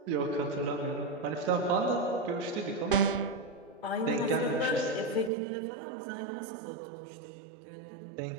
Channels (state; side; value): drops out; left; at 5.3 s